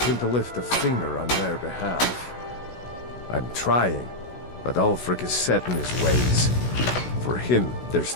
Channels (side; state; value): right; late; 16 ms